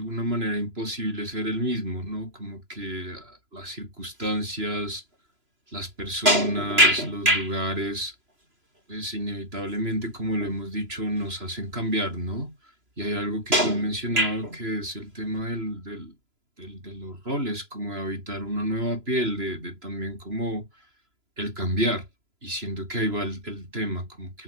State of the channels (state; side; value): late; left; 3.0 ms